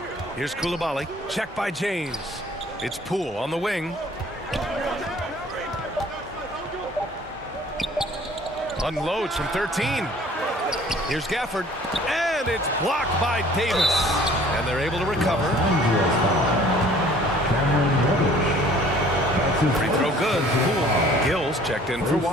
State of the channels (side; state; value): both; normal; correlation 0.53